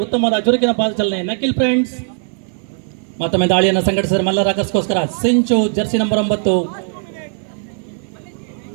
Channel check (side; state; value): left; silent; 58 dB below the other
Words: ಉತ್ತಮವಾದ ಚುರುಕಿನ ಪಾದ ಚಲನೆ ನಕಿಲ್ ಫ್ರೆಂಡ್ಸ್ ಮತ್ತೊಮ್ಮೆ ದಾಳಿಯನ್ನು ಸಂಘಟಿಸಿದರೆ ಮಲ್ಲ ರಾಕರ್ಸ್ಗೋಸ್ಕರ ಸಿಂಚು ಜರ್ಸಿ ನಂಬರ್ 9.